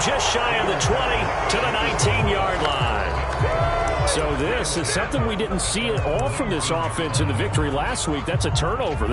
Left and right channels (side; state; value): both; identical; correlation 1.00